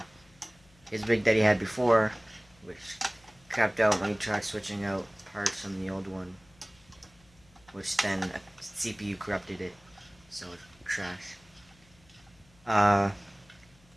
his rig that he had before, which crapped out when he tried switching out parts from the old one, which then a CPU corrupted it, so it crashed.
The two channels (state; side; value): noise; left; hum, 29 dB below the sound